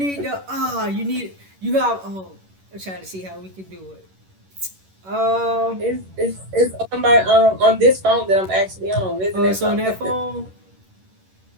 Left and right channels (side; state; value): left; late; 11 ms